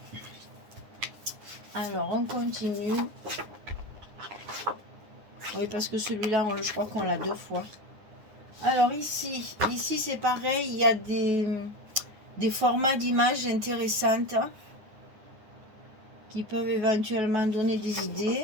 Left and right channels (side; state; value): left; late; 9.3 ms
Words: Alors, on continue. Oui, parce que celui-là, je crois qu'on l'a deux fois. Alors ici c'est pareil, il y a des formats d'images intéressantes qui peuvent éventuellement donner des